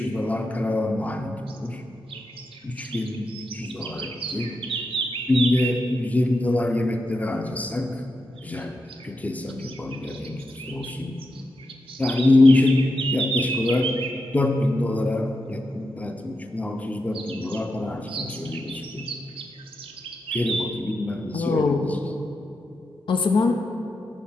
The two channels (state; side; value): normal; both; correlation 0.86